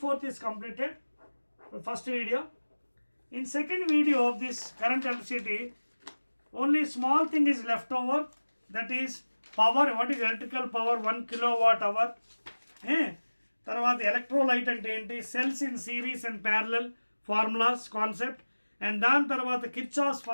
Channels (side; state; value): both; inverted; correlation -1.00